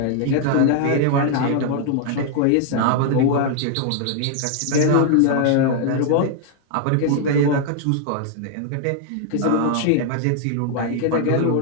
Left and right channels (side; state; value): both; different; correlation 0.00